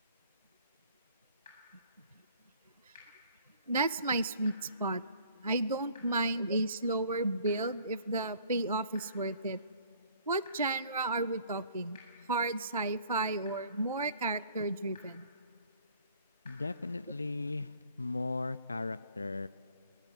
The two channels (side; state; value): both; inverted; correlation -0.55